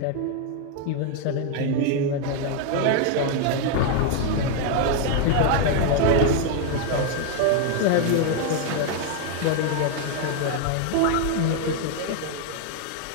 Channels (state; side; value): different; both; correlation 0.00